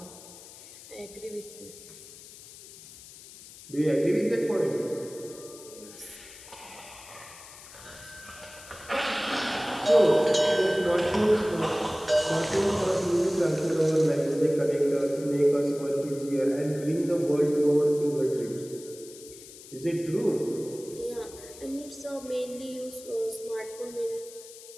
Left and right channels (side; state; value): left; noise; hiss, 18 dB below the sound